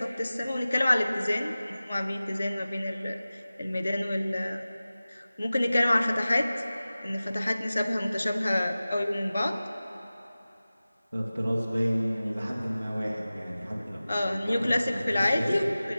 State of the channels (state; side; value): inverted; both; correlation -0.97